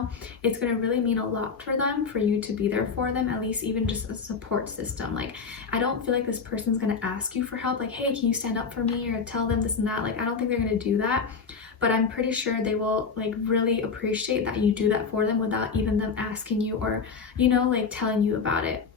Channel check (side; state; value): right; quieter; 5.4 dB